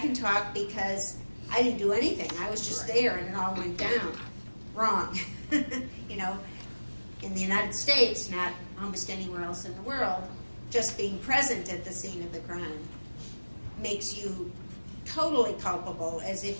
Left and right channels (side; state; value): both; inverted; correlation -1.00